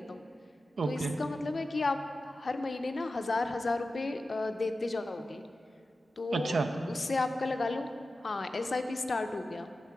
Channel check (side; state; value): both; normal; correlation 0.93